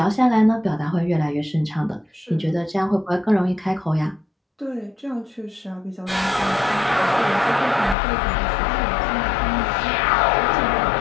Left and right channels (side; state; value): right; drops out; at 8.0 s